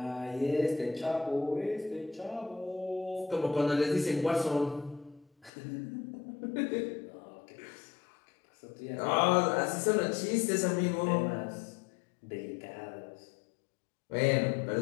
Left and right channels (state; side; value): drops out; right; at 5.5 s